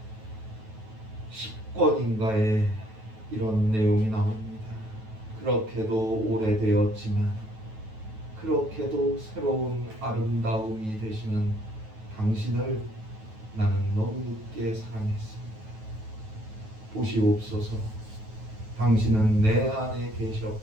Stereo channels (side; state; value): left; late; 9.2 ms